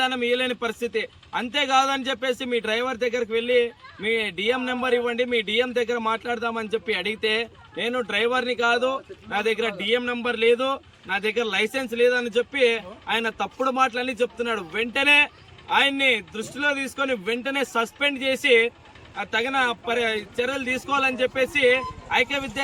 ఇవ్వలేని పరిస్థితి. అంతేకాదని చెప్పేసి మీ డ్రైవర్ దగ్గరికి వెళ్ళి మీ డిఎం నెంబర్ ఇవ్వండి, మీ డిఎం దగ్గర మాట్లాడదామని చెప్పి అడిగితే, నేను డ్రైవర్ని కాదు, నా దగ్గర డిఎం నెంబర్ లేదు, నా దగ్గర లైసెన్స్ లేదని చెప్పి ఆయన తప్పుడు మాటలన్నీ చెప్తున్నాడు. వెంటనే ఆయన్ని దృష్టిలో తీసుకొని వెంటనే సస్పెండ్ చేసి తగిన చర్యలు తీసుకోవాలని చెప్పేసి ఐక్య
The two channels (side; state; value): both; identical; correlation 1.00